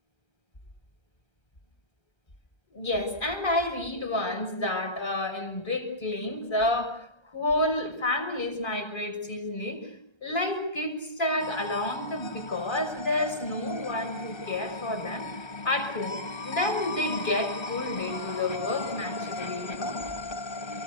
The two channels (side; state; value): right; late; 1.3 ms